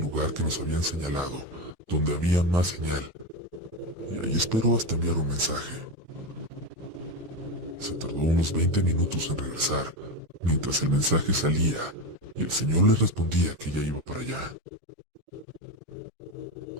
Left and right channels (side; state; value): left; late; 10 ms